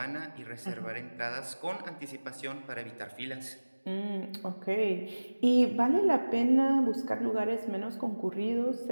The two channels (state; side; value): inverted; both; correlation -1.00